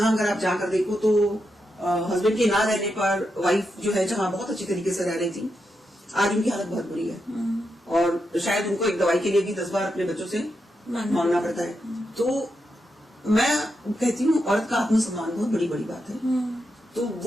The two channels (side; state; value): both; normal; correlation 0.85